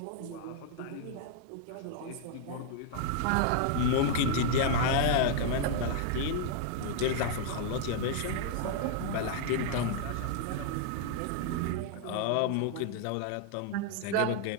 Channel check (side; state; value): both; different; correlation -0.01